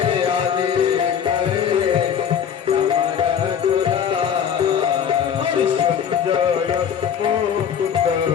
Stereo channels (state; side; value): quieter; right; 8.2 dB